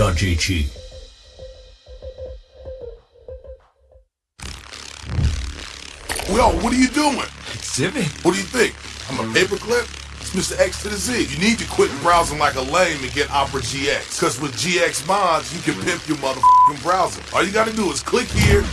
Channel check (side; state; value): both; identical; correlation 1.00